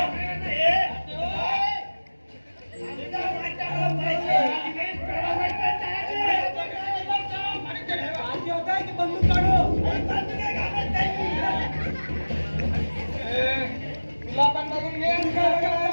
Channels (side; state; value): both; inverted; correlation -1.00